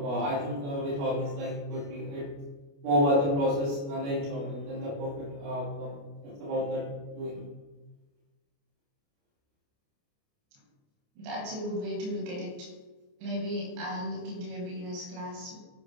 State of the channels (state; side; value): late; left; 29 ms